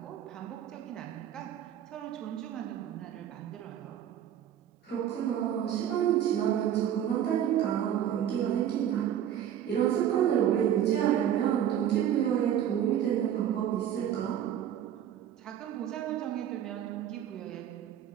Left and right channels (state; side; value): quieter; left; 10.2 dB